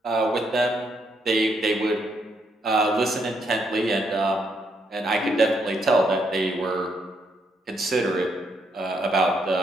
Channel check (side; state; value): both; normal; correlation 0.75